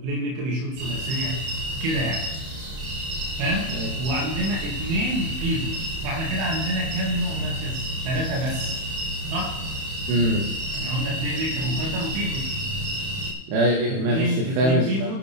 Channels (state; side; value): late; left; 31 ms